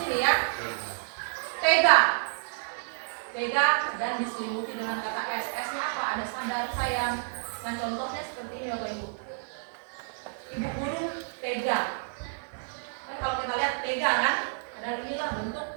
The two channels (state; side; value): silent; left; digital silence